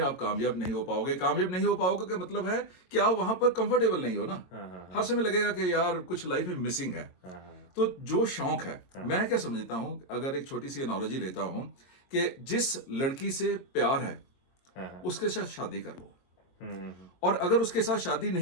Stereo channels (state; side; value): late; right; 22 ms